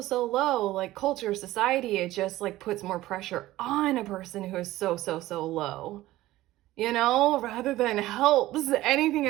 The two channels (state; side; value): quieter; left; 16.4 dB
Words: low, like culture, society, it just like puts more pressure on a person who is so low, you know, rather than helps anything